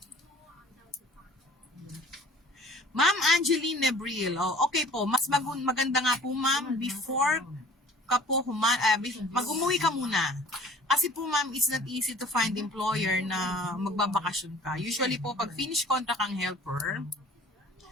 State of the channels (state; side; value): normal; both; correlation 0.48